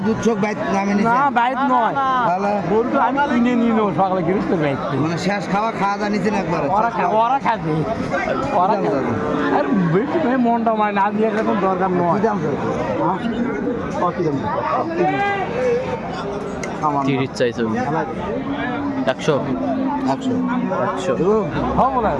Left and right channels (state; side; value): identical; both; correlation 1.00